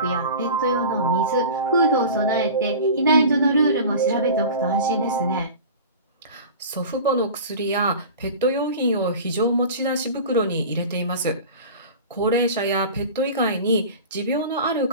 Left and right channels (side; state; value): both; inverted; correlation -0.36